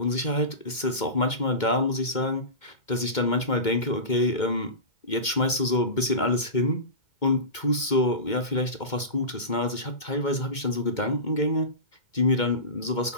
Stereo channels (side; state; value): right; late; 2.2 ms